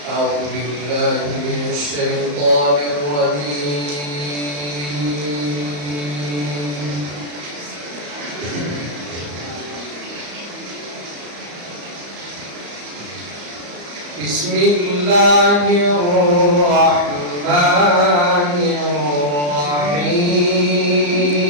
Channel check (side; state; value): left; late; 34 ms